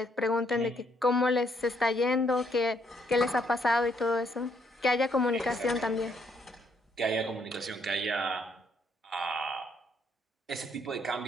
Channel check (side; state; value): both; normal; correlation 0.71